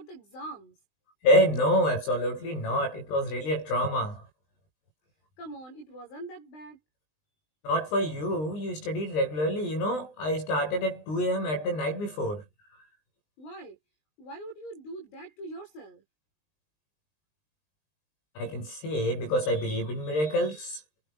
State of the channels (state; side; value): late; right; 20 ms